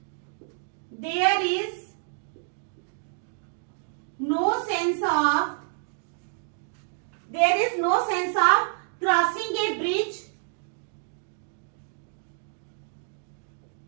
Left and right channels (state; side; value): silent; left; digital silence